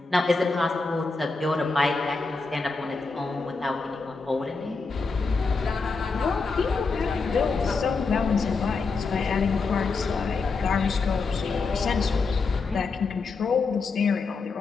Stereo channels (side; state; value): right; quieter; 4.3 dB